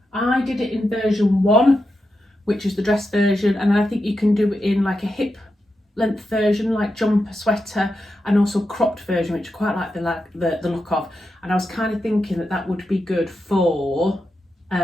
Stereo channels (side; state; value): both; normal; correlation 0.87